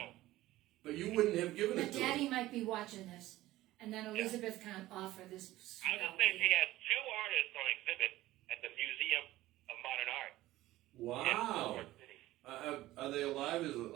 But you wouldn't have given But it to Daddy her. might be watching this, and then Elizabeth can't offer this. I was just saying she has 2 artists on exhibit at the Museum of Modern Art. Wow. In New York City. Are they alive? Is it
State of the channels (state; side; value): quieter; left; 16.3 dB